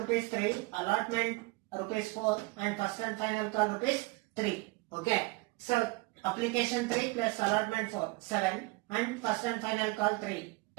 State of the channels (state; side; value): quieter; left; 24.4 dB